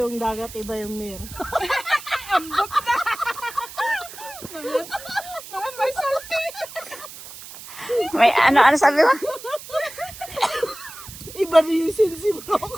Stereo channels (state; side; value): noise; right; hiss, 14 dB below the sound